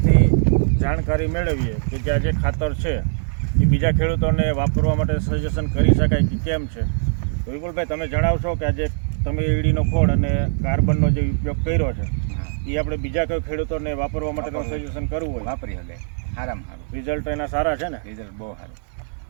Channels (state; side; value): silent; left; digital silence